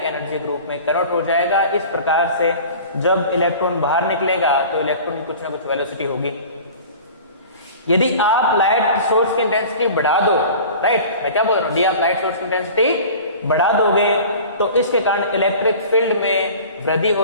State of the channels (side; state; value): both; inverted; correlation -0.41